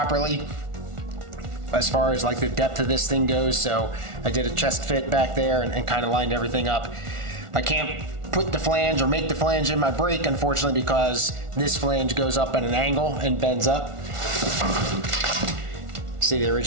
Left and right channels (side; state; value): left; late; 1.4 ms